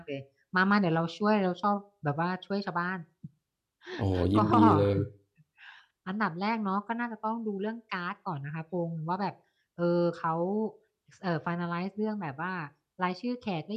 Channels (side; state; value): both; identical; correlation 1.00